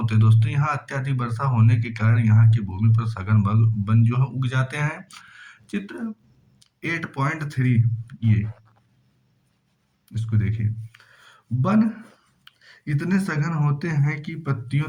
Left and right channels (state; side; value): identical; both; correlation 1.00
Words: हैं दोस्तों, यहाँ अत्यधिक वर्षा होने के कारण यहाँ की भूमि पर सघन वन जो है उग जाते हैं। चित्र 8.3 ये इसको देखिए। वन इतने सघन होते हैं कि